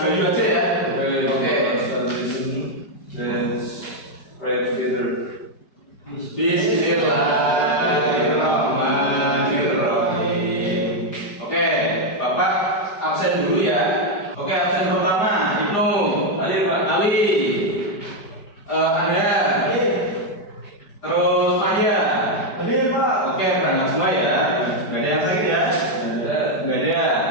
Bayu aja ya. Oke. Let's pray together. Bismillahirrahmanirrahim. Oke, Bapak absen dulu ya. Oke, absen pertama Ibnu. Ali, Pak. Ali. Ada. Terus Maya. Hadir, Pak. Oke, berangkat semua ya. Nggak ada yang sakit ya? Nggak ada.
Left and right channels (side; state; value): right; late; 4.9 ms